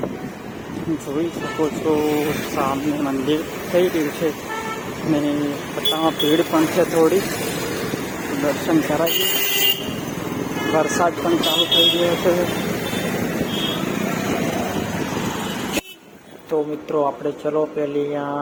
જોઈ શકો છો સામે મંદિર થઈ રહ્યું છે અને બધામાં ભીડ પણ છે થોડી. દર્શન કરાવીએ. વરસાદ પણ ચાલુ થઈ ગયો છે. તો મિત્રો આપણે ચલો પેલી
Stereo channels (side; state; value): both; identical; correlation 1.00